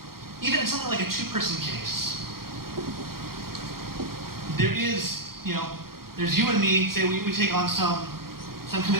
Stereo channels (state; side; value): late; left; 0.93 ms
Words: even in something like a 2-person case, there is, you know, there's you and me, say we take on some